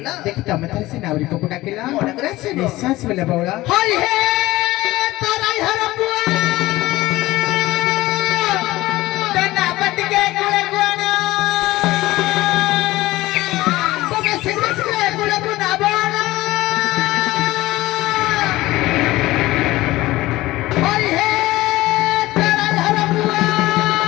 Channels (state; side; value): quieter; right; 18.0 dB